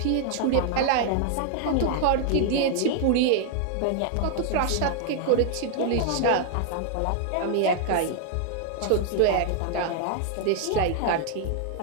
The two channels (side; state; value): both; different; correlation 0.00